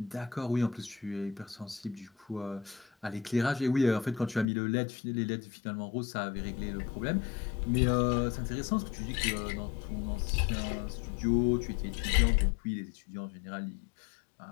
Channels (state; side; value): drops out; right; at 4.5 s